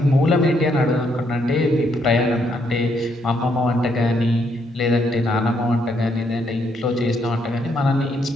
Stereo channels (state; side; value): normal; both; correlation 0.73